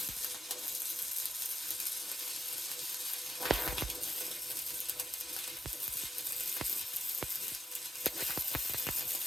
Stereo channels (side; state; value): both; normal; correlation 0.84